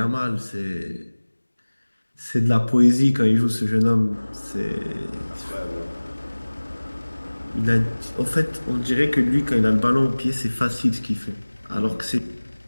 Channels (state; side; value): inverted; both; correlation -1.00